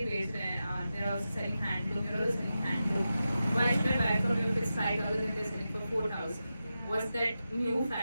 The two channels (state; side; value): inverted; both; correlation -0.91